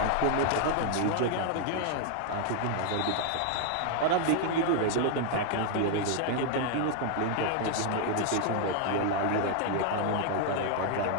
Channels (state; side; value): different; both; correlation 0.00